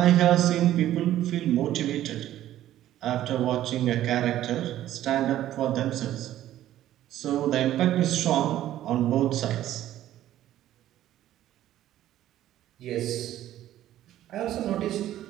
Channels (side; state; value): left; quieter; 13.0 dB